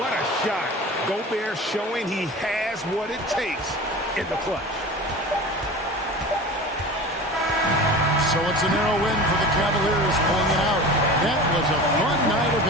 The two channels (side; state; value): both; normal; correlation 0.35